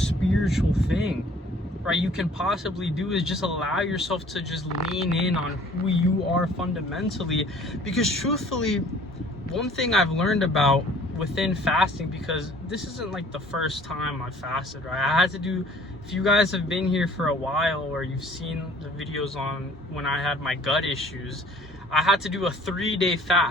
spiritual thing, right, you can possibly do, is just allow yourself to just lean in on who you are fundamentally. Because truthfully, one thing I've learned about within fasting, because this isn't like the first time I fasted, right? I had to do, if you guys have been here for a while, or you've seen the videos on when I had my gut issues, I had to do a 3-day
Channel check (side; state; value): both; normal; correlation 0.52